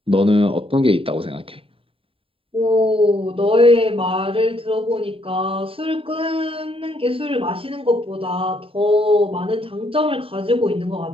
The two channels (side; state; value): left; late; 0.27 ms